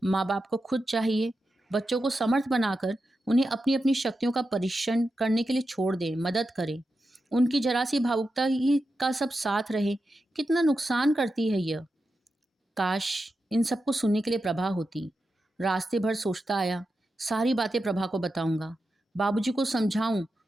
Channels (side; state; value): both; normal; correlation 0.89